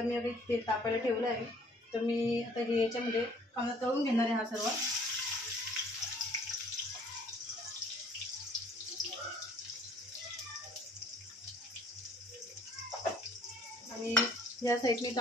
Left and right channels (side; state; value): both; normal; correlation 0.57